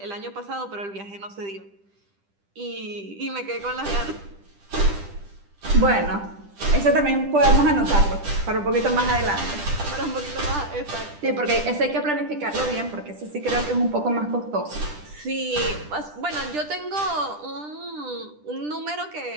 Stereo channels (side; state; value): left; late; 10 ms